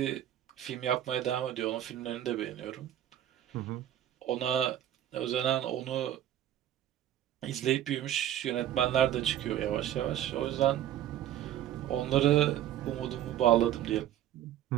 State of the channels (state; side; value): quieter; left; 11.7 dB